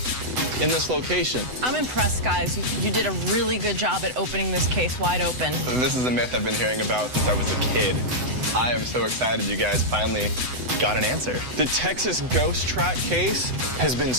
in this location. I'm impressed, guys. You did a really good job at opening this case wide open. This is a myth I've been hearing about since I was a kid. I am so excited you guys finally got an answer. The Texas ghost track case has been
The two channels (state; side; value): late; left; 8.0 ms